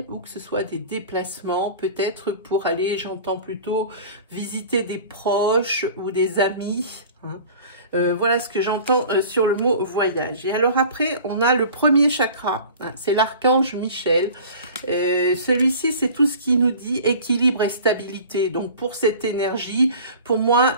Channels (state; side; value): inverted; both; correlation -0.42